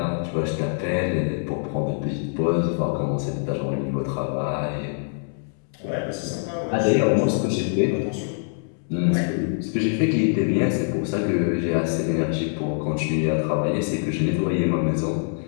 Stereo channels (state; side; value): silent; right; 62 dB below the other